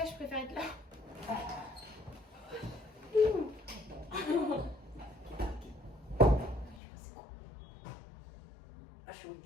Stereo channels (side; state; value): right; drops out; at 6.8 s